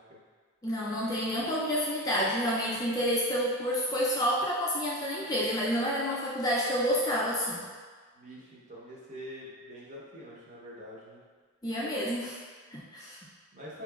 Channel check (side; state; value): both; normal; correlation 0.26